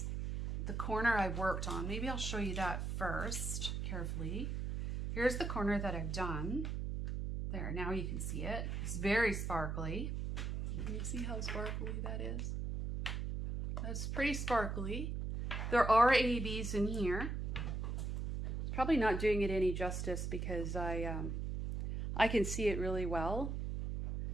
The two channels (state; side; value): noise; right; hum, 2 dB below the sound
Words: the corner I worked on. Maybe I'll show you that first carefully. Here's the corner that I've done. There, now you can see it. It's very sparkly. Can you see how sparkly that is? That's pretty sparkly. There are ABs in here. It's probably not doing it any justice because I can see it really well